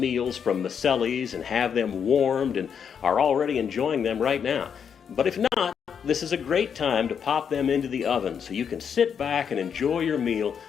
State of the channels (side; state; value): right; quieter; 7.4 dB